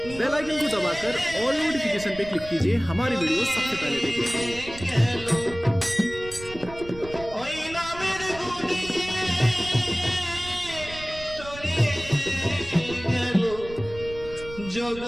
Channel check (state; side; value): noise; right; rumble, 15 dB below the sound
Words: बेल आइकन को दबाकर ऑल नोटिफिकेशन पे क्लिक कीजिए हमारी वीडियो सबसे पहले देखने के लिए। जग